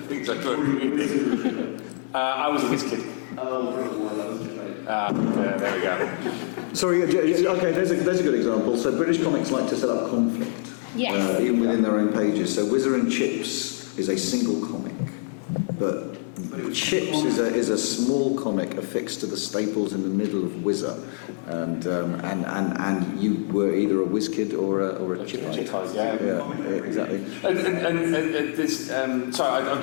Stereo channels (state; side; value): silent; right; digital silence